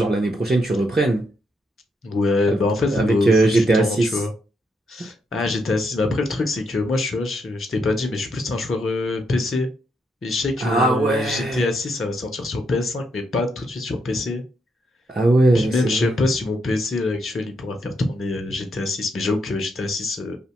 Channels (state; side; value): normal; both; correlation 0.78